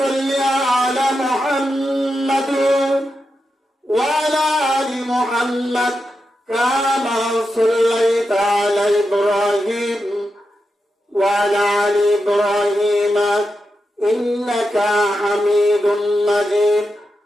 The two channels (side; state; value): both; normal; correlation 0.88